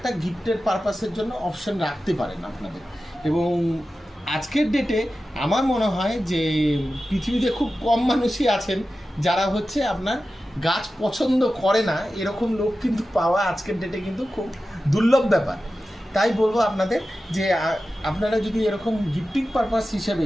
গিফটের পারপাসের জন্য অপশন রাখতে পারেন আপনাদের। এবং আজকের ডেটে আমার মনে হয় যে পৃথিবীতে খুব কম মানুষই আছেন যারা হচ্ছে আপনার গাছ পছন্দ করে না, এরকম লোক কিন্তু পাওয়া আজকের ডেটে কিন্তু খুব দুর্লভ ব্যাপার। তাই বলবো আপনাদের যে আপনারা যদি এরকম গিফটিং পারপাস হিসেবে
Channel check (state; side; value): normal; both; correlation 0.93